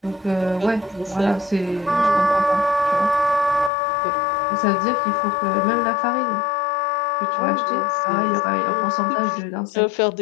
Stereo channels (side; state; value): right; drops out; at 3.7 s